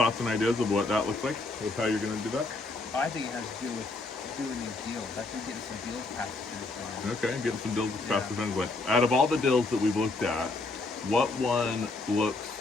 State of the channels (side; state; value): right; quieter; 3.3 dB